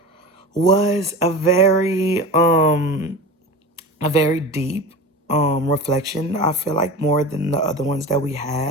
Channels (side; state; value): both; normal; correlation 0.30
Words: was a very deep reflection. I feel like more than the other ones that we